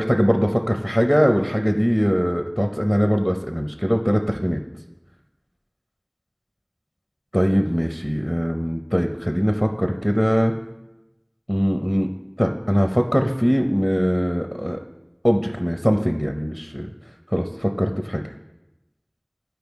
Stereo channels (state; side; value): identical; both; correlation 1.00